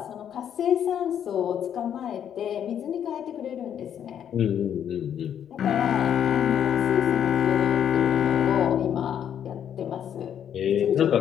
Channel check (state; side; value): quieter; right; 9.3 dB